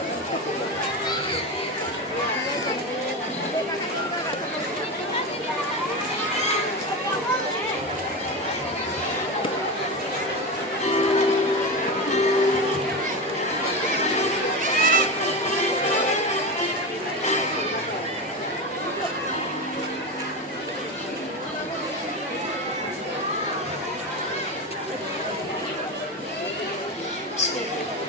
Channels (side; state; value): both; normal; correlation 0.19